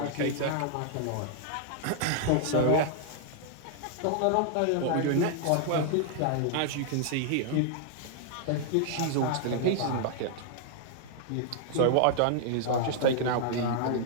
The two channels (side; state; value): both; different; correlation 0.00